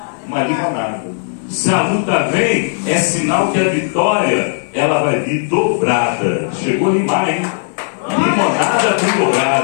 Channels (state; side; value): silent; right; 69 dB below the other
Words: Se a luta vem, é sinal que a vitória ela vai vir dobrada. Chegou demais, hein? Limonada com